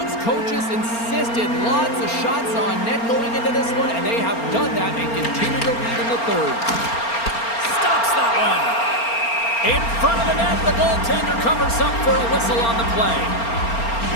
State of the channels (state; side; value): late; right; 4.3 ms